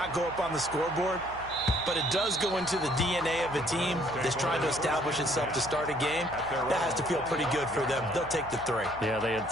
go up on the scoreboard, but it does go into the DNA of a team that's trying to establish itself to start a game. That has to feel pretty good for them. They'll take the 3. Yeah, they had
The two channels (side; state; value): right; noise; hum, 17 dB below the sound